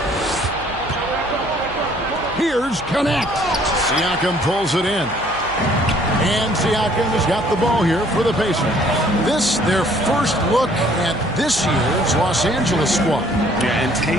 Here's Connect. Siakam pulls it in. And Siakam has got the ball here for the Pacers. This, their first look at this year's Los Angeles squad. Yeah, and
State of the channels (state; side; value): noise; right; hum, 18 dB below the sound